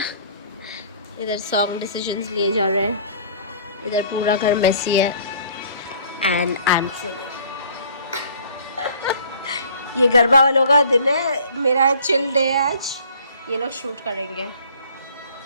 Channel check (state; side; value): inverted; both; correlation -0.54